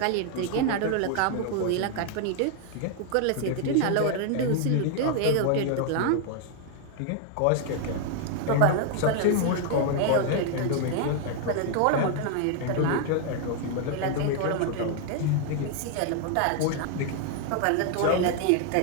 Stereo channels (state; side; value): different; both; correlation 0.00